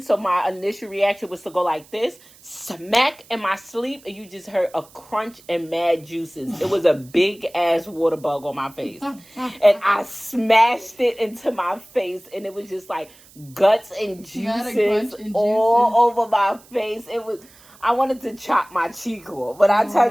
So my initial reaction was to go like this, smack in my sleep, and you just heard a crunch and mad juices. It was a big ass water bug on my face. And I smashed it into my face, and it was just like guts and juices all over my face. It was, I wanted to chop my cheek off. But I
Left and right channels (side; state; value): right; noise; hiss, 25 dB below the sound